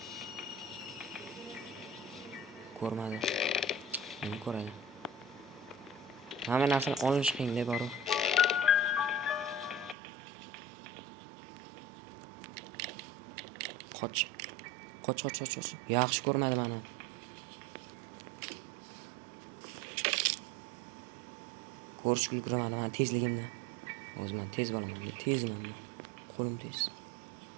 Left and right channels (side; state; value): left; drops out; at 10.0 s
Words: Ko'rmadi. Endi ko'radi. Hamma narsani olish qiyin deb boru. Qoch. Yaxshi ko'rmadi meni. Ko'rish ulguramadi men tezligimni. O'zim tez bo'laman, tezman. Qo'lim tez.